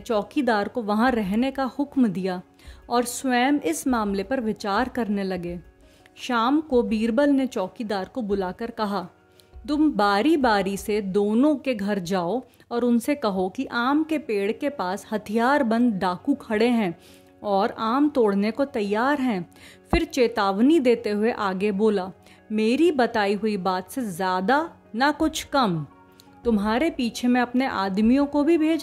को वहाँ रहने का हुक्म दिया और स्वयं इस मामले पर विचार करने लगे। शाम को बीरबल ने चौकीदार को बुलाकर कहा, तुम बारी बारी से दोनों के घर जाओ और उनसे कहो कि आम के पेड़ के पास हथियारबंद डाकू खड़े हैं और आम तोड़ने को तैयार हैं। फिर चेतावनी देते हुए आगे बोला, मेरी बताई हुई बात से ज़्यादा ना कुछ कम। तुम्हारे पीछे मैं अपने आदमियों को भी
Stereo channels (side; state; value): both; identical; correlation 1.00